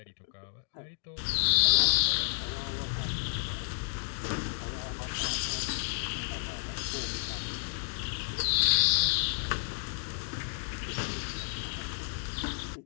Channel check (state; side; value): silent; right; digital silence